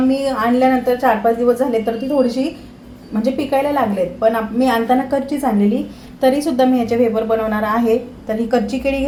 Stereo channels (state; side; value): identical; both; correlation 1.00